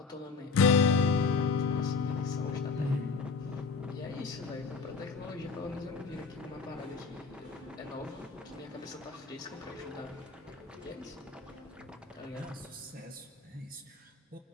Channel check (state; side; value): quieter; right; 4.9 dB